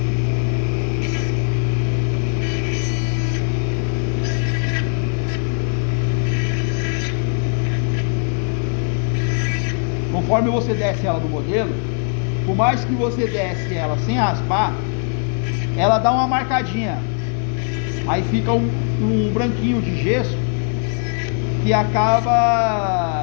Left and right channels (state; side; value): silent; right; 57 dB below the other